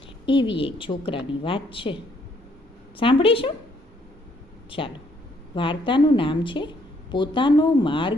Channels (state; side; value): normal; both; correlation 0.68